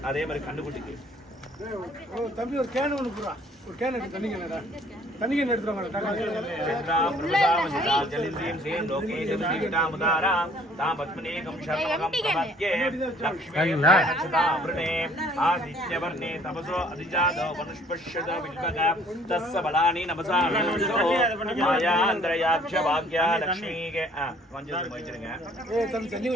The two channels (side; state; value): both; normal; correlation 0.57